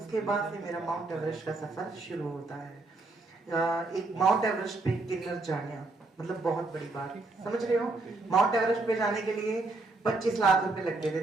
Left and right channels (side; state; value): left; quieter; 3.3 dB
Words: बाद से मेरा माउंट एवरेस्ट का सफर शुरू होता है। एक माउंट एवरेस्ट पे किन्नर जाना मतलब बहुत बड़ी बात, समझ रहे हो। माउंट एवरेस्ट पे जाने के लिए 25 लाख रुपए लगते